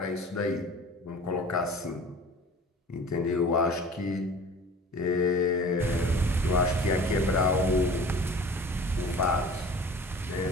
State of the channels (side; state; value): both; normal; correlation 0.43